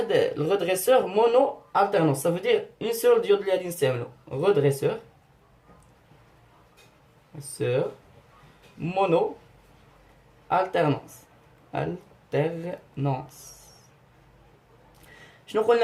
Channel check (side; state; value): both; identical; correlation 1.00